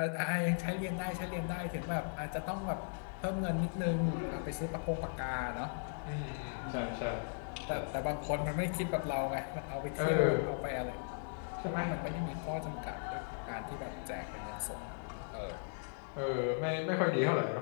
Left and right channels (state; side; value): silent; right; digital silence